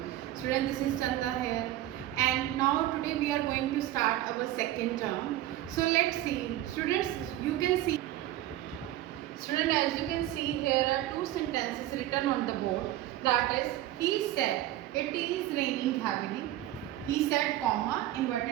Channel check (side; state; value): left; quieter; 14.2 dB